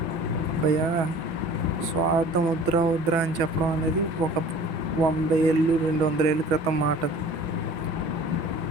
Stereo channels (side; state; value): left; late; 6.1 ms